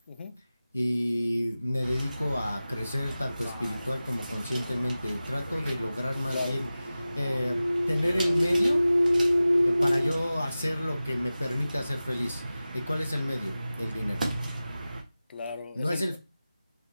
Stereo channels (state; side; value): inverted; both; correlation -0.96